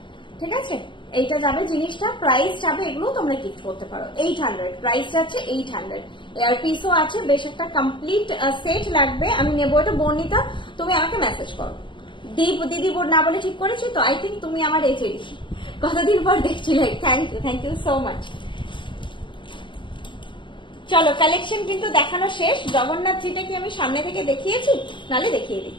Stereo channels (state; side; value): late; right; 0.24 ms